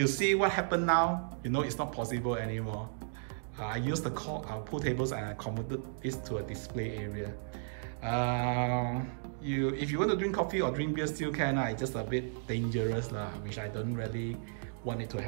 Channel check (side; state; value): left; silent; digital silence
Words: see what happened now, you know it's not possible anymore. I used the pool tables and I converted this to a display area. If you want to drink coffee or drink beer, still can. It's just a bit dangerous, which I don't really want it to